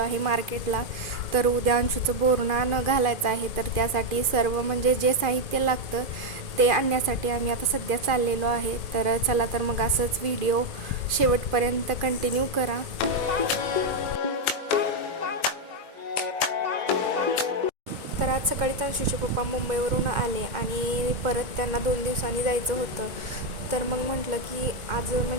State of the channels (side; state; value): left; late; 2.4 ms